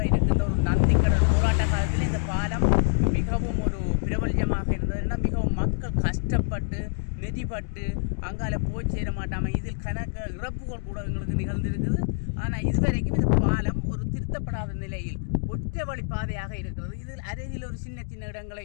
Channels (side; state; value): right; silent; digital silence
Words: இருக்கின்ற ஒரு நந்திக்கடல் போராட்ட காலத்தில் இந்த பாலம் மிகவும் ஒரு பிரபல்யமாக இருந்ததுன்னா மிகவும் மக்கள் கஷ்டப்பட்டு நெதிப்பட்டு அங்கால போய் சேர மாட்டாமல் இதில் கணக்கு இறப்புகள் கூட எங்களுக்கு நிகழ்ந்திருக்குது. ஆனால் இதுவரைக்கும் இந்த பாலம் ஒரு திருத்தப்படாத நிலையில் ஒற்றை வழி பாதையாக இருக்கிறது. இதில் அருகில் ஒரு சின்ன சின்ன இடங்களை